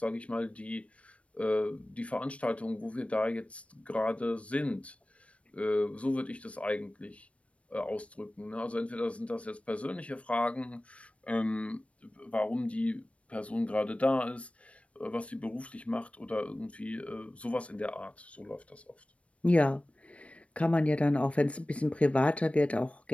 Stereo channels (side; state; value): right; late; 0.063 ms